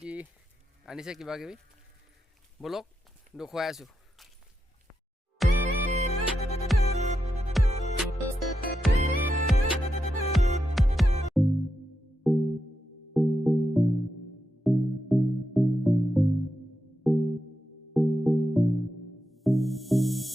আনিছে কিবা কিবি বলক দেখুৱাই আছোঁ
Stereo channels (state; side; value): normal; both; correlation 0.86